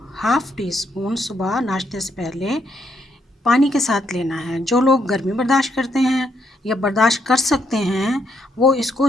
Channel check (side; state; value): both; normal; correlation 0.75